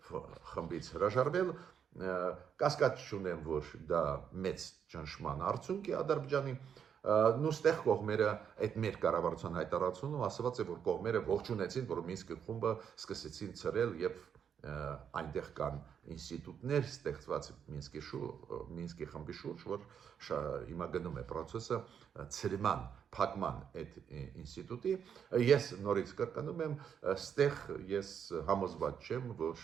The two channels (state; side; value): quieter; left; 7.9 dB